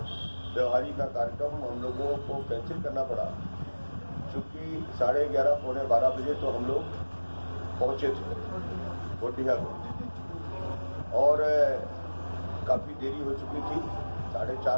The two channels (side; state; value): both; inverted; correlation -1.00